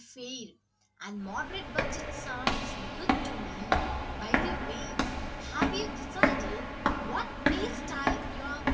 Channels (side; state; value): both; identical; correlation 1.00